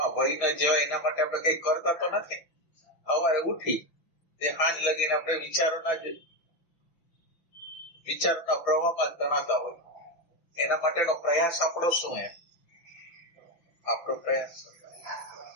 વહી ના જવાય એના માટે આપણે કઈ કરતા તો નથી. સવારે ઉઠી તે સાંજ લગીને આપણે વિચારોના પ્રવાહમાં તણાતા હોય. એના માટેનો પ્રયાસ આપણો શું? એમ આપણો પ્રયાસ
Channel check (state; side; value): late; right; 5.9 ms